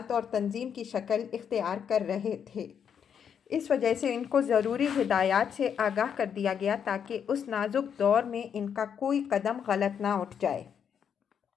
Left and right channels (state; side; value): quieter; right; 7.8 dB